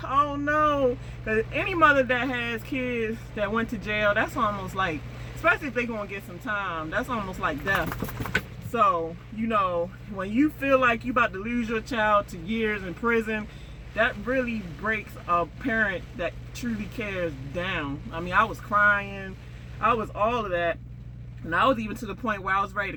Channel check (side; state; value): both; identical; correlation 1.00